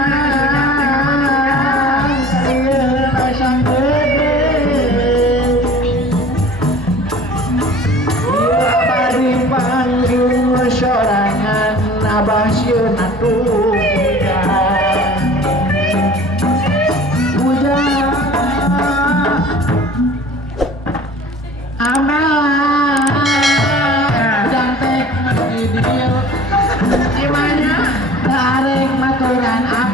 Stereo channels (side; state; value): both; normal; correlation 0.45